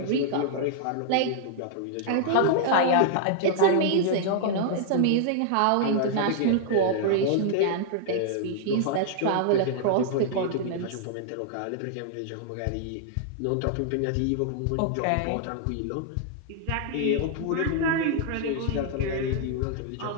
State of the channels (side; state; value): both; different; correlation -0.01